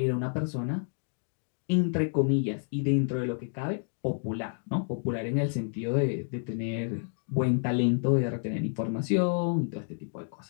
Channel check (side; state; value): right; silent; digital silence